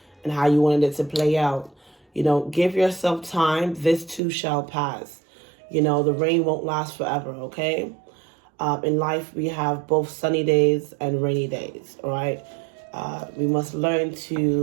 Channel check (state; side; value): drops out; left; at 4.2 s